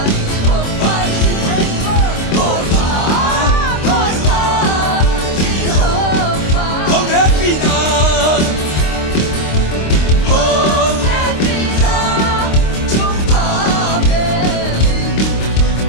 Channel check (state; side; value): late; right; 26 ms